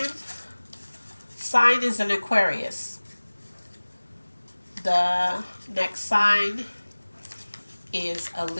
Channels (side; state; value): both; inverted; correlation -1.00